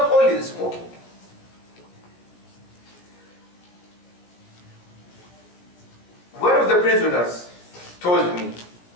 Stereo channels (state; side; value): late; right; 17 ms